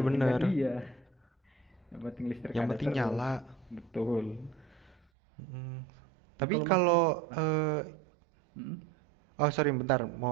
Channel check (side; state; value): left; drops out; at 5.0 s